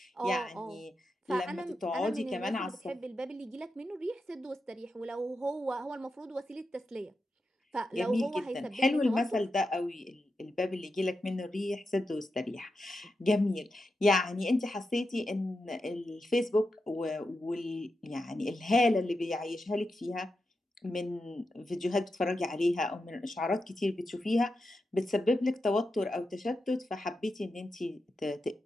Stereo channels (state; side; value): normal; both; correlation 0.88